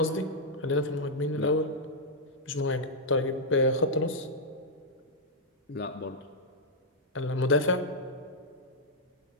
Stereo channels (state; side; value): normal; both; correlation -0.05